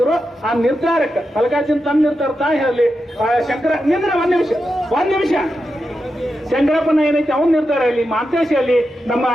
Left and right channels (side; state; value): both; normal; correlation 0.88